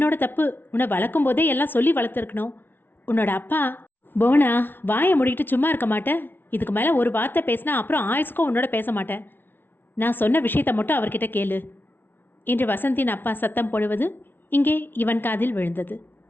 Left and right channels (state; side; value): late; right; 0.10 ms